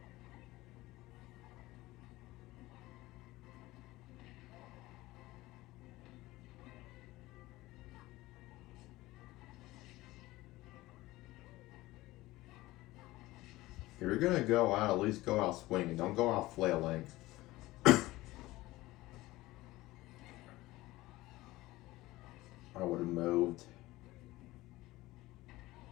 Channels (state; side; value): quieter; right; 18.6 dB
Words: If you're gonna go out, at least go out swinging. Don't go out flailing. I would have moved.